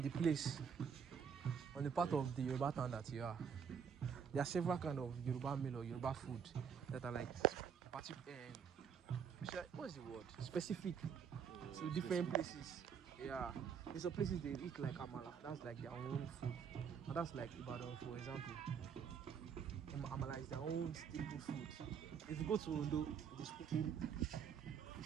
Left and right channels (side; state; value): left; quieter; 7.1 dB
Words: the place, on the part of the Yoruba town that you are. There are several kind of Yoruba meal or Yoruba food that are like what's the word? Specific to different places. Yeah. In some places they eat like amala. That's like their own food. And that's like Ibadan, for example. Amala is their own staple food. If you go to Ondo, it is pupuru.